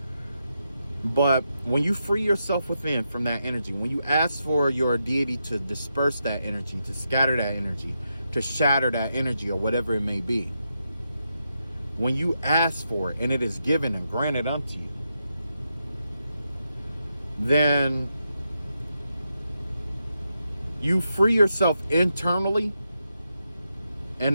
but when you free yourself within from that energy, when you ask for your deity to disperse that energy, to scatter that energy, to shatter that energy or whatever it may be, when you ask for it and it is given and granted unto you, then You free yourself internally,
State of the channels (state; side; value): inverted; both; correlation -0.85